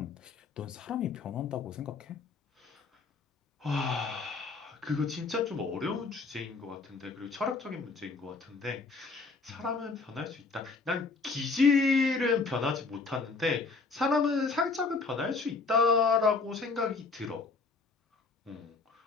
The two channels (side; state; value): right; quieter; 4.2 dB